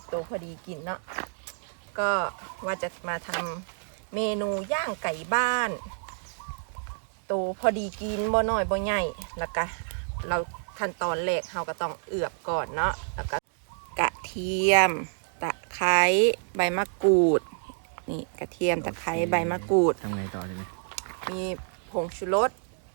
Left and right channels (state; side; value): silent; left; digital silence